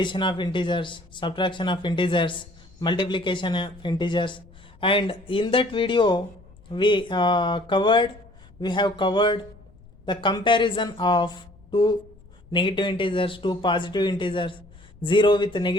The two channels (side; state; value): left; noise; rumble, 24 dB below the sound